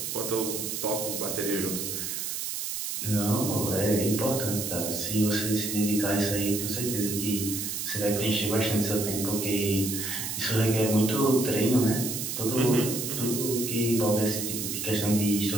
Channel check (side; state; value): right; noise; hiss, 4 dB below the sound